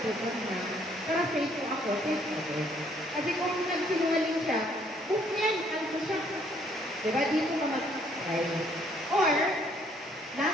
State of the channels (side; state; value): both; normal; correlation 0.65